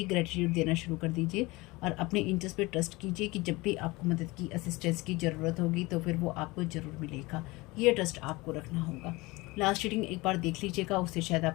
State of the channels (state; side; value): quieter; right; 22.6 dB